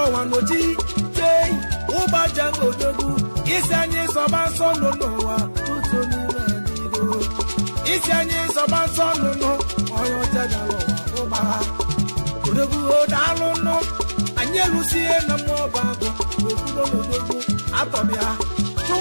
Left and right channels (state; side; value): inverted; both; correlation -1.00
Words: ọnwa n'oji tei ụbaja odogwu isi anyị sọba nsọ nọ n'ụwa ụzọ n'ime anyị isi anyị sọba nsọ nọ n'ụwa onye ọcha bịala ọnwa ụba ha odogwu odalụ nụ anyị elusie na mmụọ bago wekwuo n'odogwu atọbịa